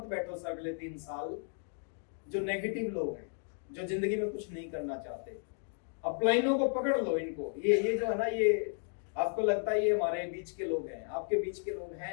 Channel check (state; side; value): silent; right; 55 dB below the other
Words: बैठो सर अगले 3 साल जो नेगेटिव लोग हैं, जो जिंदगी में कुछ नहीं करना चाहते। अपलाइनों को पकड़ लो, इनको। ये जो है ना, ये आपको लगता है ये हमारे बीच के लोग हैं, आपके बीच के लोग